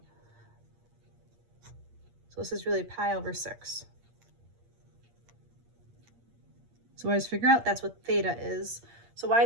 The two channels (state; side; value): late; left; 8.6 ms